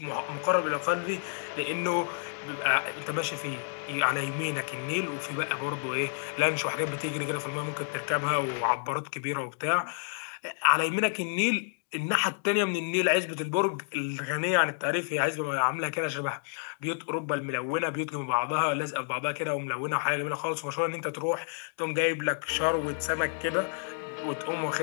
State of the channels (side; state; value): right; silent; digital silence